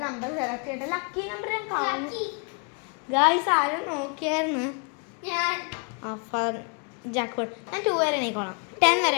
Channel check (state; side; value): quieter; right; 36.2 dB